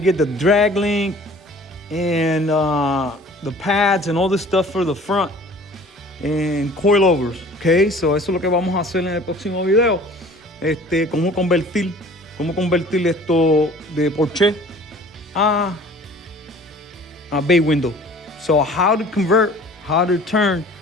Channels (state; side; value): normal; both; correlation 0.48